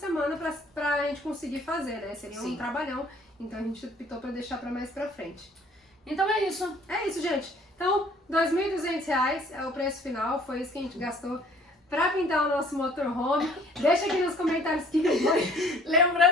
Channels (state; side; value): normal; both; correlation 0.56